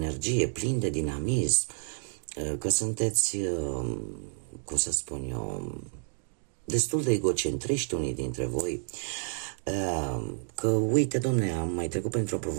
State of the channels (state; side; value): silent; left; 58 dB below the other